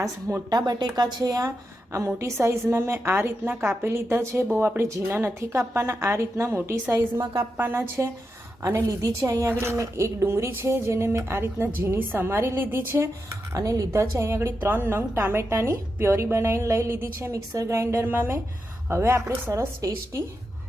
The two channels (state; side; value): normal; both; correlation 0.87